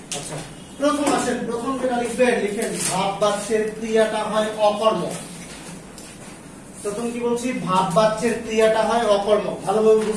আচ্ছা, প্রথম আসেন, প্রথম যেটা লিখবেন, লিখেন ভাববাচ্যের ক্রিয়াটা হয় অকর্ম। প্রথম কি বলছি? ভাববাচ্যের ক্রিয়াটা হয় অকর্ম। ভালোভাবে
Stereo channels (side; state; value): both; identical; correlation 1.00